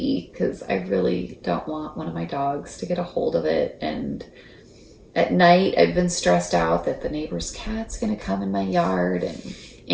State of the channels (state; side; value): identical; both; correlation 1.00